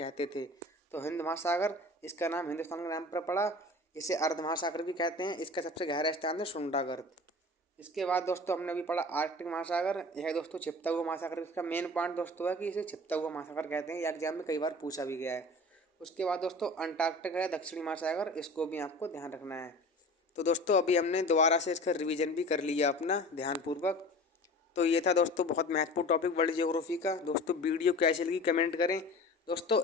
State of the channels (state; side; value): normal; both; correlation 0.39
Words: थे। तो हिंद महासागर इसका नाम हिंदुस्तान के नाम पर पड़ा, इसे अर्ध महासागर भी कहते हैं। इसका सबसे गहरा स्थान है सुंडा गर्त। इसके बाद दोस्तों हमने भी पढ़ा आर्कटिक महासागर, यह दोस्तों छिपता हुआ महासागर। इसका मेन पॉइंट दोस्तों है कि इसे छिपता हुआ महासागर कहते हैं, यह एग्जाम में कई बार पूछा भी गया है। उसके बाद दोस्तों अंटार्कटिक है दक्षिणी महासागर, इसको भी आपको ध्यान रखना है। तो दोस्तों अभी हमने दोबारा से इसका रिवीजन भी कर लिया अपना ध्यानपूर्वक। तो ये था दोस्तों बहुत महत्वपूर्ण टॉपिक वर्ल्ड ज्योग्राफी का। दोस्तों वीडियो कैसी लगी कमेंट करें। दोस्तों